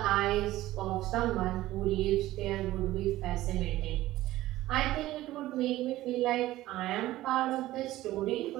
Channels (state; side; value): quieter; left; 15.9 dB